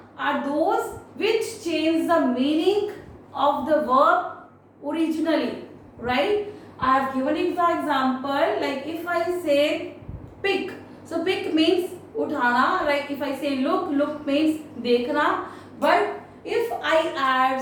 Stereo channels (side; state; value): both; identical; correlation 1.00